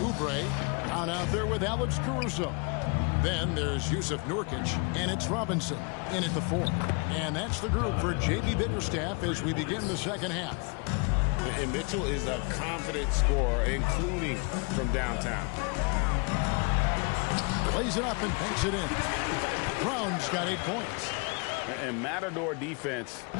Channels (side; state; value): right; quieter; 32.7 dB